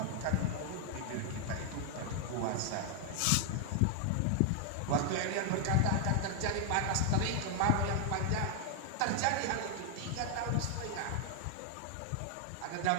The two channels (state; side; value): different; both; correlation 0.00